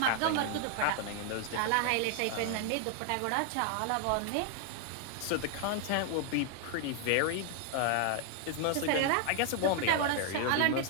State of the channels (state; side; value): different; both; correlation 0.00